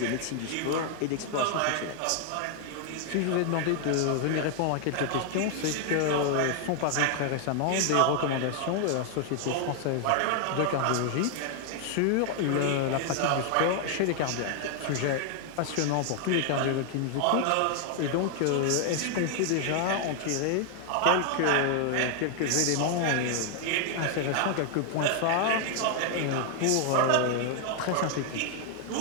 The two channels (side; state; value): both; different; correlation 0.00